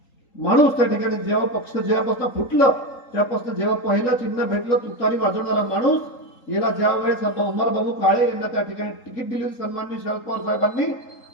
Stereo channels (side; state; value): right; late; 3.8 ms